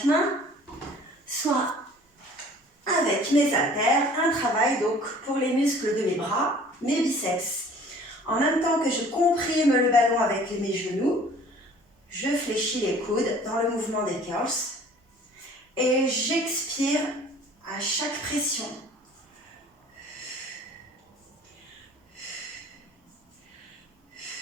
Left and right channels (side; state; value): both; normal; correlation 0.50